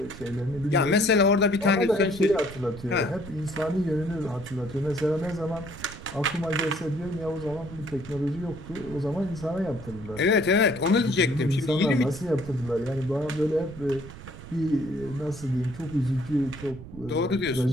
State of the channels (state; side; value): noise; right; rumble, 14 dB below the sound